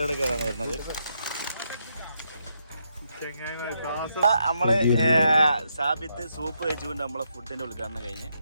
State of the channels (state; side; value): inverted; both; correlation -0.79